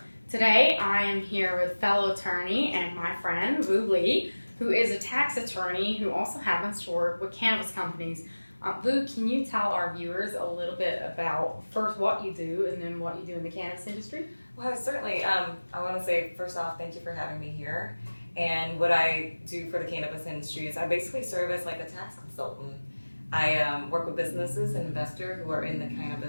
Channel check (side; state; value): both; inverted; correlation -1.00